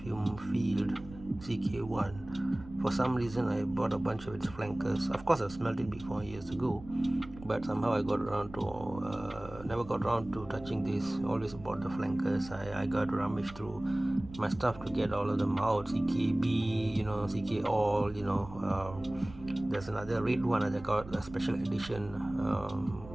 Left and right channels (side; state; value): right; noise; rumble, 17 dB below the sound